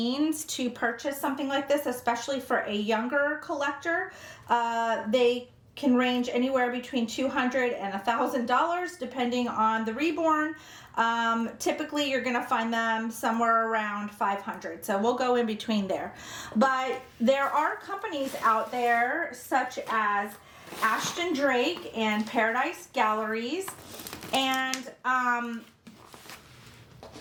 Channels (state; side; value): identical; both; correlation 1.00